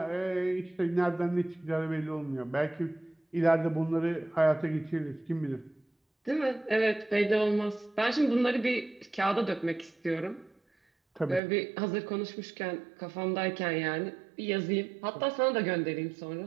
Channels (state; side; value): drops out; left; at 11.4 s